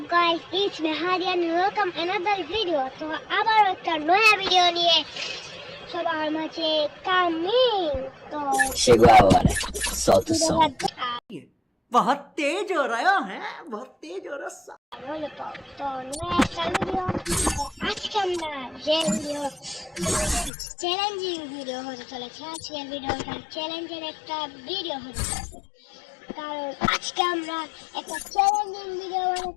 guys, it's me Hadi and welcome another video. তো আবার একটা নয়া ভিডিও নিয়ে সবার মাঝে কামিং। তো शिगवावर साउथ सॉन्ग बहुत तेज हो रहा है, बहुत तेज हो रहा है। তো নয়া একটা ভিডিও। আজকে আমরা যে ভিডিও চ্যালেঞ্জিং ভিডিও হতে চলেছে। আজকের ভিডিওটা চ্যালেঞ্জের একটা ভিডিও হতে চলেছে, কারণ আজকে আমরা একটা চ্যালেঞ্জিং ভিডিও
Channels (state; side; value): drops out; right; at 20.5 s